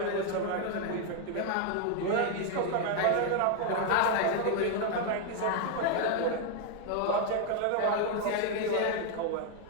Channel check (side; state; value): both; different; correlation 0.01